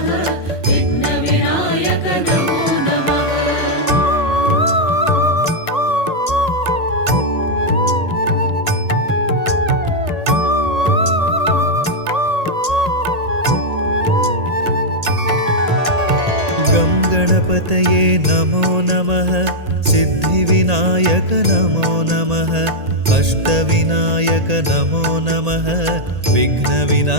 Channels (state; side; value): late; left; 1.8 ms